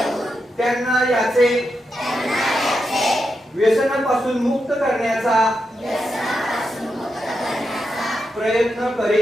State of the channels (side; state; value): both; normal; correlation 0.86